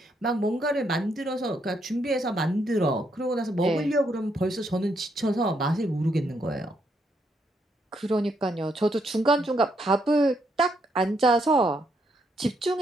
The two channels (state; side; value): normal; both; correlation 0.75